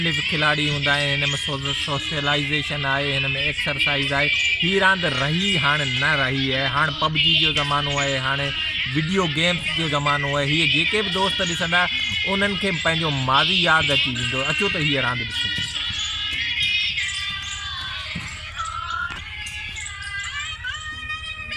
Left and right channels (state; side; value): identical; both; correlation 1.00